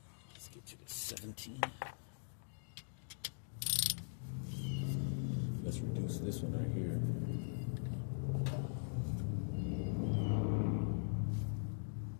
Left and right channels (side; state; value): right; silent; digital silence